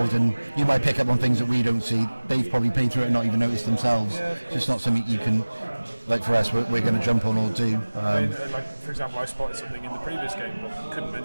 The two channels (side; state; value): both; inverted; correlation -1.00